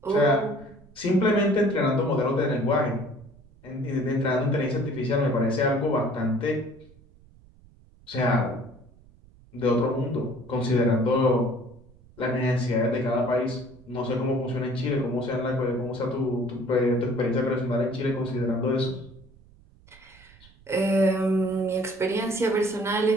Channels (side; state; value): right; noise; rumble, 26 dB below the sound